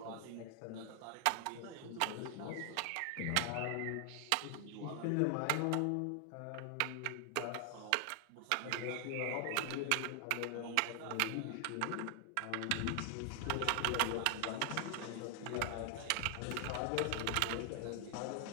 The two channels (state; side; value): different; both; correlation 0.00